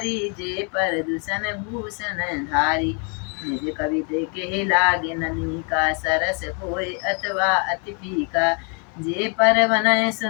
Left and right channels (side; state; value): right; quieter; 38.3 dB